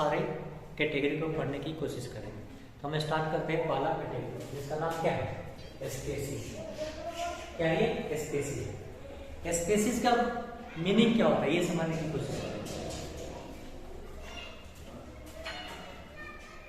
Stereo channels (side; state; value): both; identical; correlation 1.00